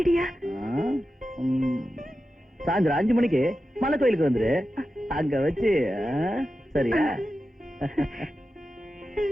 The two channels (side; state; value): both; normal; correlation 0.91